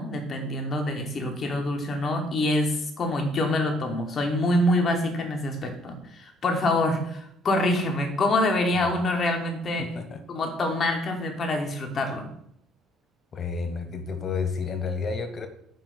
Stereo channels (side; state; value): both; normal; correlation 0.65